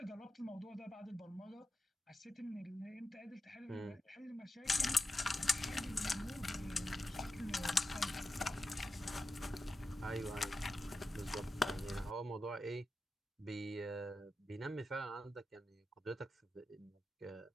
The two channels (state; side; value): normal; both; correlation 0.91